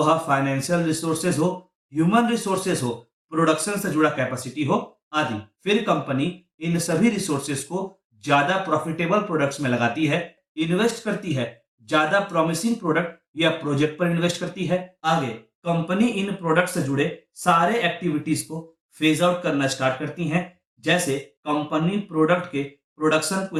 फाइनेंशियल रिसोर्सेज हो, ह्यूमन रिसोर्सेज हो, प्रोडक्शन से जुड़ा कैपेसिटी हो आदि। फिर कंपनी इन सभी रिसोर्सेज को ज्यादा प्रॉफिटेबल प्रोडक्ट्स में लगाती है, इन्वेस्ट करती है, ज्यादा प्रॉमिसिंग प्रोडक्ट या प्रोजेक्ट पर इन्वेस्ट करती है। आगे कंपनी इन प्रोडक्ट से जुड़े सारे एक्टिविटीज को फेज आउट करना स्टार्ट करती हैं। जैसे कंपनी प्रोडक्ट के प्रोडक्शन को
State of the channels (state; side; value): identical; both; correlation 1.00